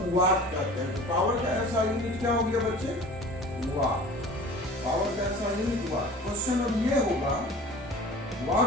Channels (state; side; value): normal; both; correlation 0.42